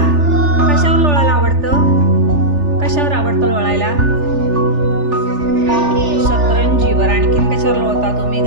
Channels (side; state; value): left; late; 3.4 ms